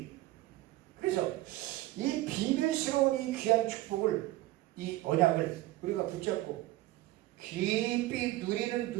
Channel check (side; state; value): left; quieter; 17.1 dB